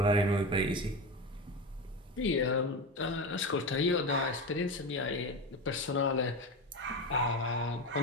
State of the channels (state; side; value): normal; both; correlation 0.21